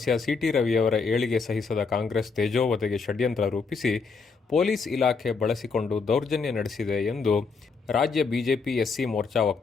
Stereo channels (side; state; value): right; quieter; 4.8 dB